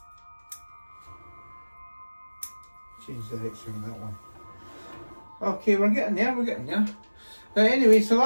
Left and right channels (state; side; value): inverted; both; correlation -1.00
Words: Change the direction on that one. Okay, we're getting there, Now anyway, so